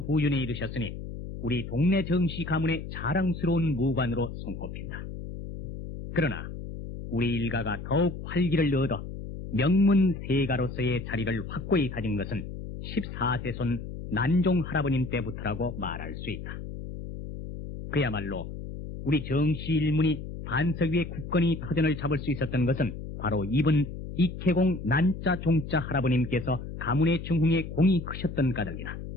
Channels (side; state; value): left; noise; hum, 9 dB below the sound